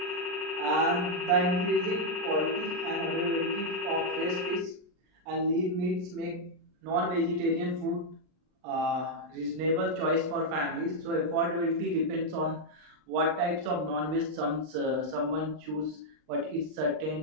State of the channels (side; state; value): left; late; 39 ms